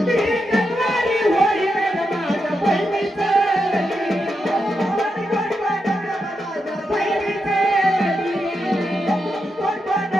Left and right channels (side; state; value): both; normal; correlation 0.86